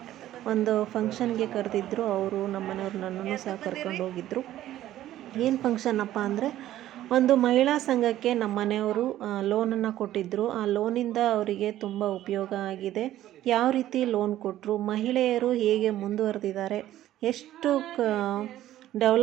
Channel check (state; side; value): quieter; left; 13.4 dB